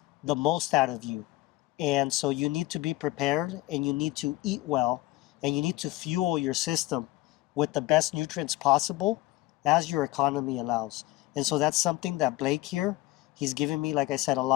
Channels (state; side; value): quieter; right; 18.4 dB